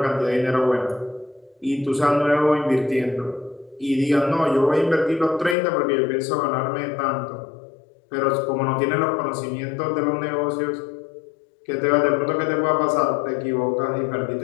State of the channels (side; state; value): right; drops out; at 5.6 s